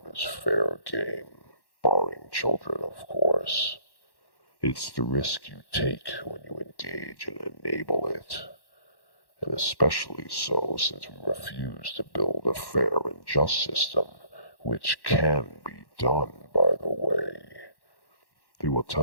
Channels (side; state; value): right; late; 1.1 ms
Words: is fair game. Barring children, of course. It's the risk you take when you engage and enable it. And especially so since we refuse to build a fair and just system, which can be done, by the way. They will